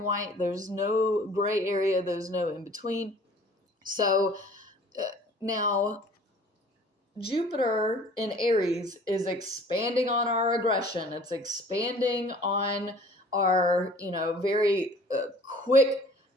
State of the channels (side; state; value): both; normal; correlation 0.50